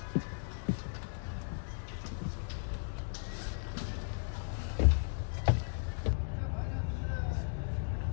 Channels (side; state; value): right; silent; digital silence